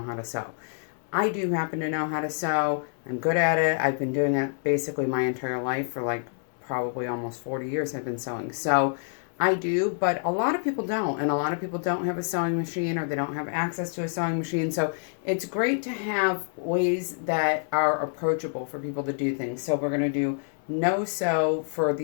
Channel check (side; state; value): right; silent; digital silence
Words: how to sew. I do happen to know how to sew. I'm good at it. I've been doing it basically my entire life for like probably almost 40 years I've been sewing. So I do, but a lot of people don't. And a lot of people don't have a sewing machine or they don't have access to a sewing machine. So it's great to have ways that are approachable for people to do things. So we're going to do no sew for